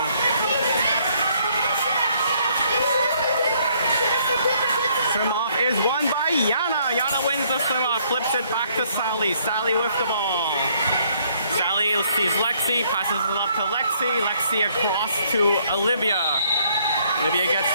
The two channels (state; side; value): inverted; both; correlation -0.66